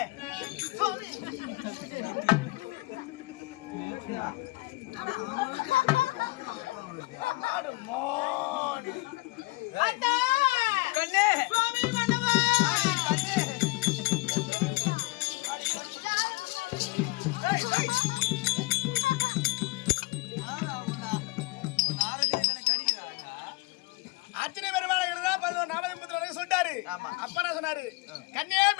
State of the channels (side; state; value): right; quieter; 22.9 dB